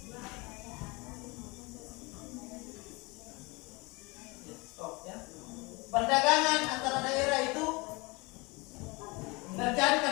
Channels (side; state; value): right; quieter; 26.2 dB